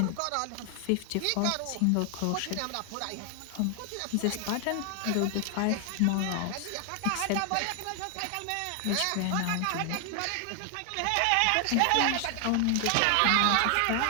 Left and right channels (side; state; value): both; different; correlation 0.00